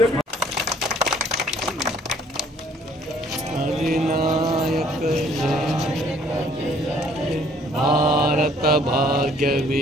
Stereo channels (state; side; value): normal; both; correlation 0.60